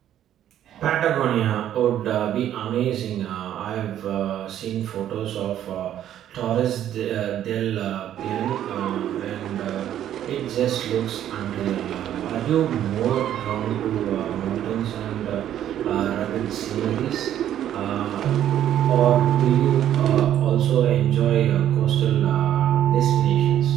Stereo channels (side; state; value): left; quieter; 11.1 dB